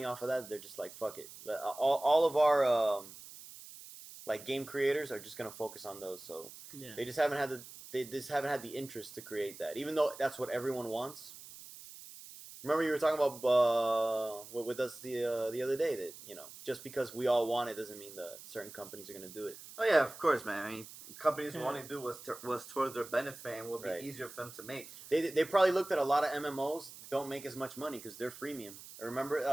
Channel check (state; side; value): noise; right; hiss, 15 dB below the sound